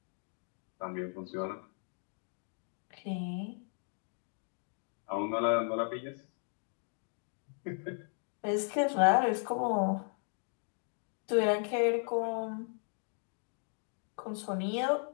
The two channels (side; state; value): right; silent; 54 dB below the other